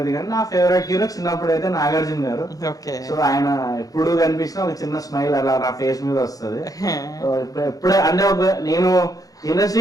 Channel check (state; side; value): late; right; 0.17 ms